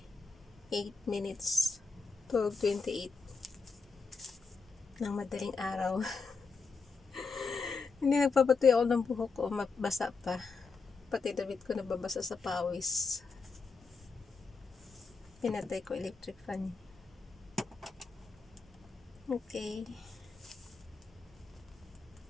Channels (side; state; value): right; quieter; 4.6 dB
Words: minutes. 12:28 ng madaling araw. Hindi nagpapatuloy ako ng buhok ko, mabasa pa. Pati damit ko nababasa sa pawis. Pinatay ko electric fan. Okay.